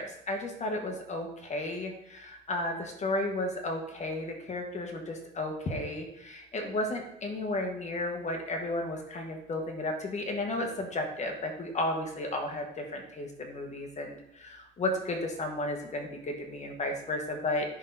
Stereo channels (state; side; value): normal; both; correlation 0.23